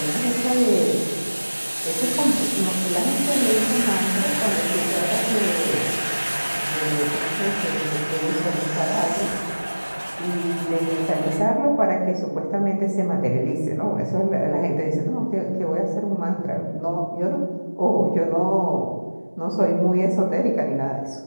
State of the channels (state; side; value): inverted; both; correlation -1.00